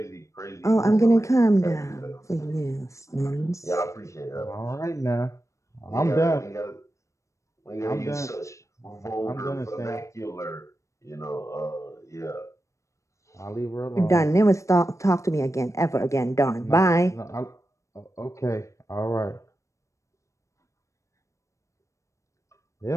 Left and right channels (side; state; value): right; late; 0.15 ms